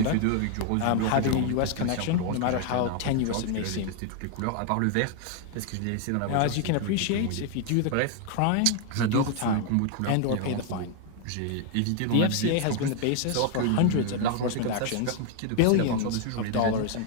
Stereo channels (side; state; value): both; different; correlation 0.00